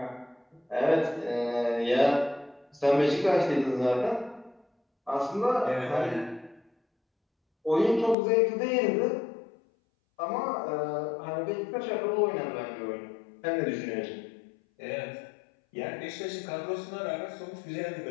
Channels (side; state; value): right; drops out; at 8.2 s